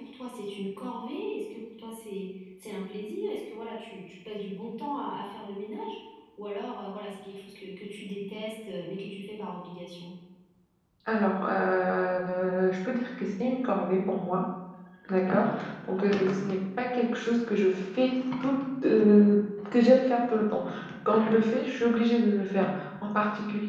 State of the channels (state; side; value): identical; both; correlation 1.00